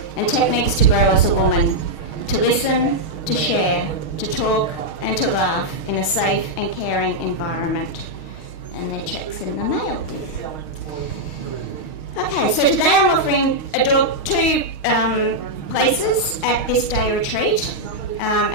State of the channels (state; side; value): late; right; 6.4 ms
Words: and techniques to grow as a woman, to listen, to share, to talk, and to laugh in a safe and caring environment. And their check's in the mail. Okay, so today I'm offering two places at this day retreat